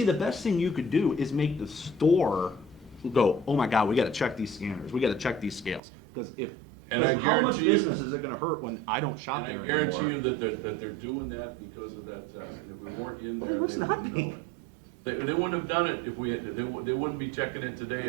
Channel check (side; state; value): left; drops out; at 5.8 s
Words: the best thing you could do is make the store go, oh my God, we gotta check these scanners, we gotta check these scales. Because And I how much guarantee you- business is it gonna hurt when I don't shop there And I anymore? guarantee you that they're doing that because of that, if we weren't in Well, there. they must not wouldn't be. know it. They wouldn't have done it if we had, they wouldn't be checking it today. if we